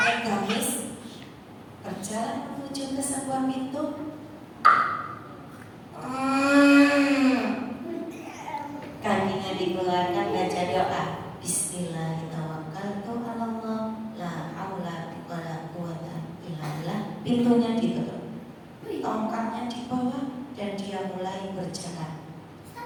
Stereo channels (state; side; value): identical; both; correlation 1.00